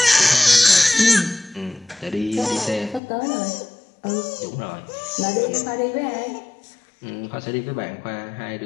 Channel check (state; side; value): drops out; right; at 3.0 s